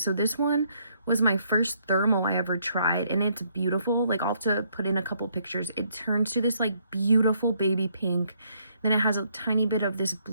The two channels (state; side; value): inverted; both; correlation -0.70